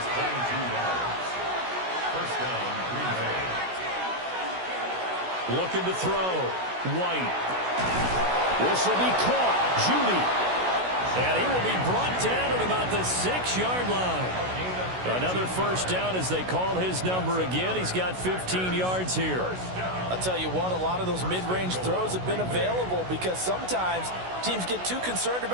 Looking to throw. White. This will be caught. Judy. And he will be brought down at about the 6-yard line. Another first down as they call his number again. He's got 15 yards here. I'll tell you what, a lot of those mid-range throws have been available because sometimes teams get too concerned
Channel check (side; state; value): left; late; 16 ms